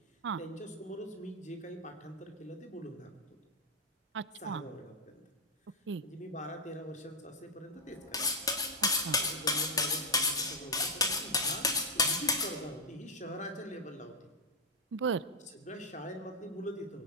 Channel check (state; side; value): normal; both; correlation -0.02